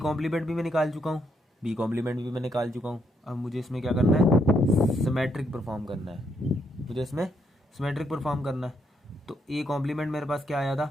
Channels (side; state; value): both; normal; correlation 0.75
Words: भी मैं निकाल चुका हूँ, बी कॉम्प्लीमेंट भी मैं निकाल चुका हूँ। अब मुझे इसमें क्या करना है, सिमेट्रिक परफॉर्म करना है, मुझे इसमें सिमेट्रिक परफॉर्म करना है। तो ए कॉम्प्लीमेंट मेरे पास क्या आया था,